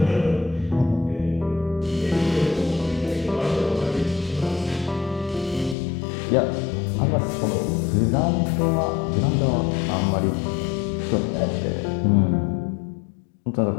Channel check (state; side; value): drops out; right; at 5.8 s